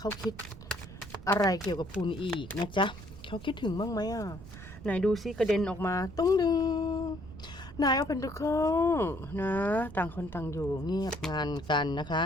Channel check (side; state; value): right; noise; rumble, 15 dB below the sound